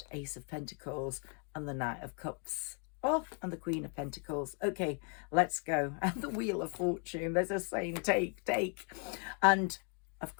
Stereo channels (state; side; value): quieter; right; 38.8 dB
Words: Ace of Pentacles and the Knight of Cups. Oh, and the Queen of Pentacles. Okay, let's go. And the Wheel of Fortune. There's a saying, take. And, of